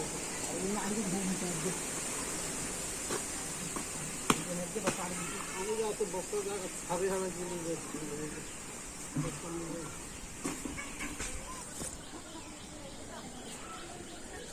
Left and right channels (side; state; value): both; identical; correlation 1.00